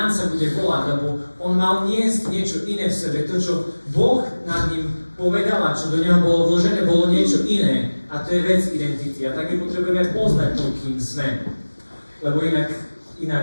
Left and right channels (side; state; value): both; inverted; correlation -1.00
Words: sa bude volať, lebo on mal niesť niečo iné v sebe. To, čo Boh nad ním povedal a čo do neho bolo vložené, bolo niečo iné. A to je vec identity. A tak my potrebujeme poznať to, kým sme. Lebo